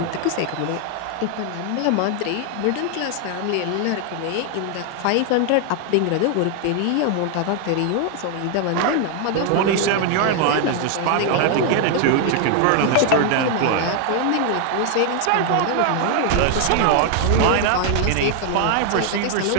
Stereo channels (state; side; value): different; both; correlation 0.00